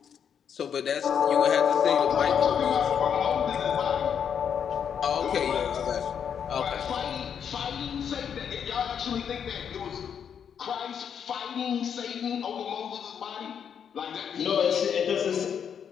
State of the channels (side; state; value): right; quieter; 7.8 dB